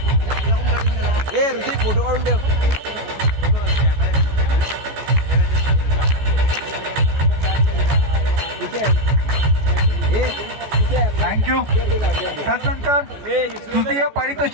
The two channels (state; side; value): late; left; 14 ms